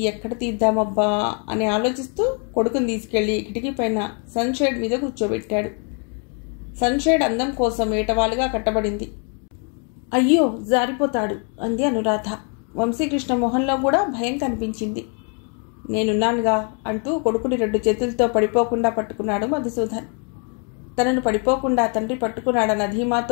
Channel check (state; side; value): quieter; right; 39.9 dB